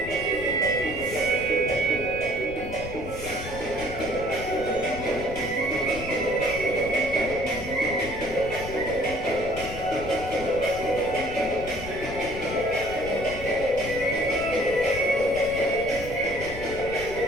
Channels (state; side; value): noise; left; rumble, 10 dB below the sound